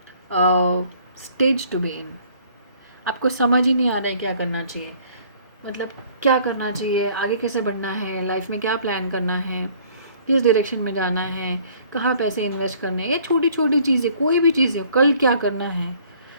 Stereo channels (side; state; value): both; inverted; correlation -0.57